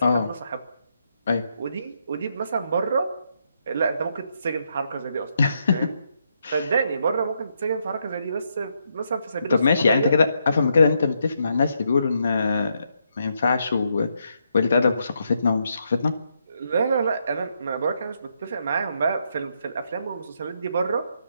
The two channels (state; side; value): inverted; both; correlation -0.78